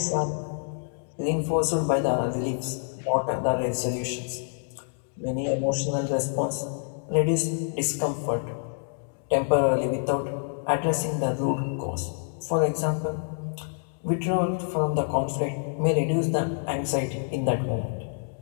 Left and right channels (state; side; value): silent; right; digital silence